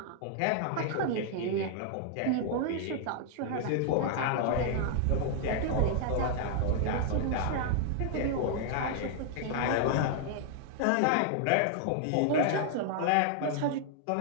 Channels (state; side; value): different; both; correlation -0.01